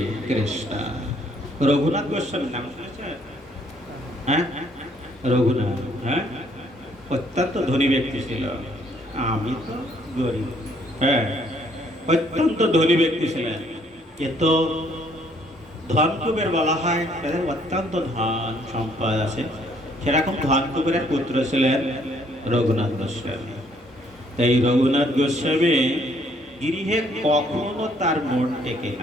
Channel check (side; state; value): both; normal; correlation 0.65